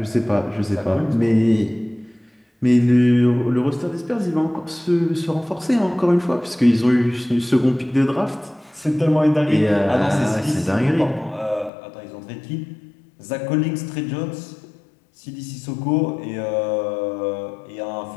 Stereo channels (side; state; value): right; drops out; at 11.7 s